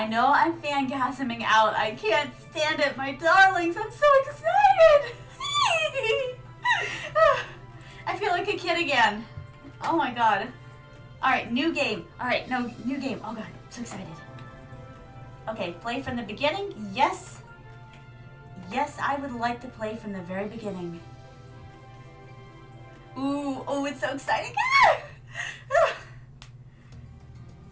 know I'm fangasming out. I can't stand it, my darlings. I'm so excited. I feel like a kid again. Oh my god. Alright, new game. Alright, no, new game. Oh god, I'm so excited. Okay, play from the beginning? Yes. Yes, I would like to play from the very beginning. Ooh, oh, it's so exciting.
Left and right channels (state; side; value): identical; both; correlation 1.00